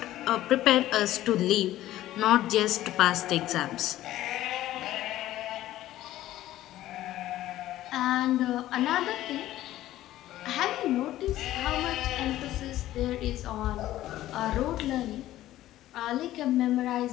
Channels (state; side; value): quieter; right; 14.3 dB